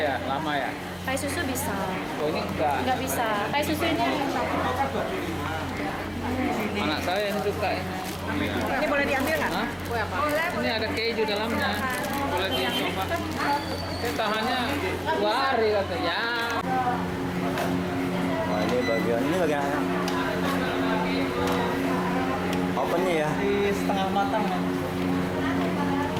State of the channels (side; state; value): both; identical; correlation 1.00